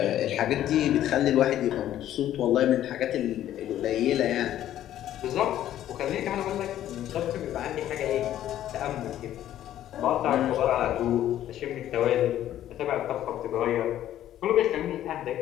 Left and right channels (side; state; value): right; quieter; 12.1 dB